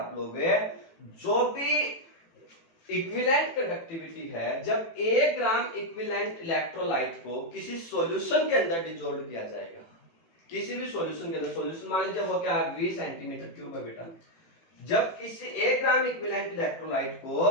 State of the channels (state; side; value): late; right; 18 ms